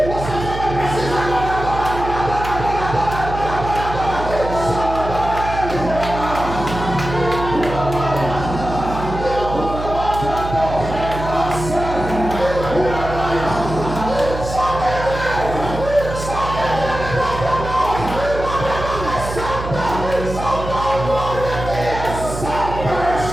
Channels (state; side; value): noise; right; hum, 7 dB below the sound